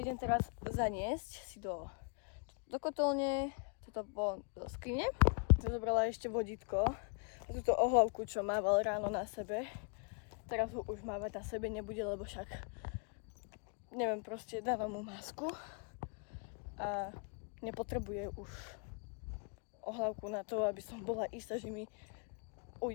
teraz zaniesť si do kotolne, toto bolo do skrine. Zobrala ešte vodítko, túto ohlavku, čo mával ráno na sebe. Teraz ho už mávať na sebe nebude, lebo však neviem, proste dávam mu masku a nepotrebuje už ohlavku na to, aby som bola istá, že mi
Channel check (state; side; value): quieter; right; 39.4 dB